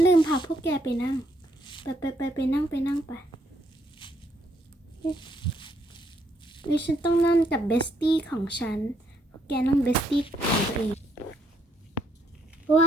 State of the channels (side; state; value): both; normal; correlation 0.73